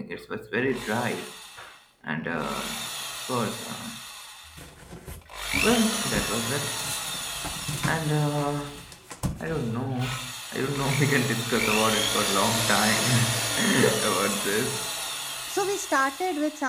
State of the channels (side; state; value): both; identical; correlation 1.00